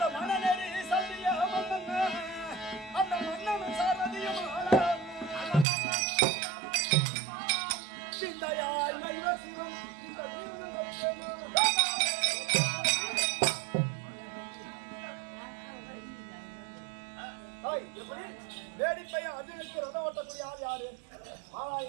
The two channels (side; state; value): left; drops out; at 5.7 s